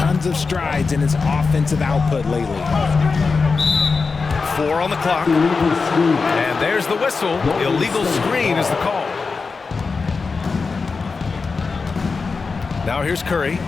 of strides in his offensive output lately. 4 on the clock. And there's the whistle. Illegal screen is the call. Now here's Curry.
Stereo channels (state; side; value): quieter; right; 4.6 dB